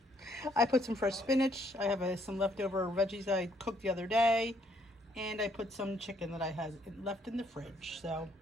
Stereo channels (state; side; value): normal; both; correlation 0.68